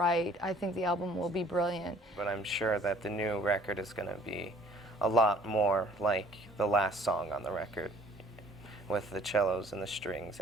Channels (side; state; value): both; normal; correlation 0.55